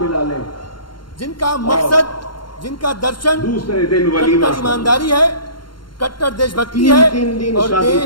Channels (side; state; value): right; late; 0.72 ms